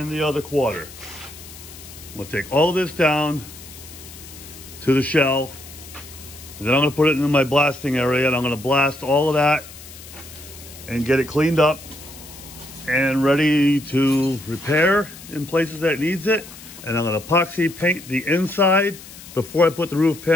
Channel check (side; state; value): left; noise; hiss, 17 dB below the sound